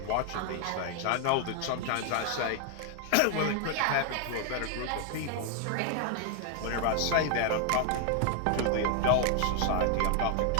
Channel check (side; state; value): both; different; correlation 0.00